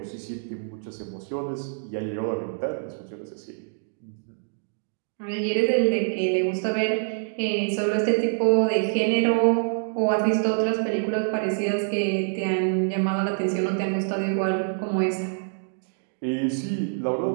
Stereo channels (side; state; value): left; silent; digital silence